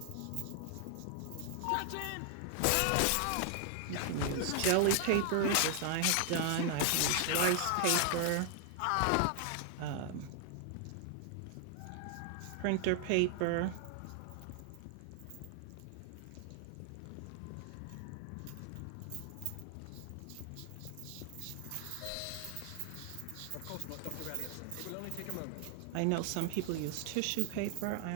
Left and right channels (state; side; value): different; both; correlation 0.00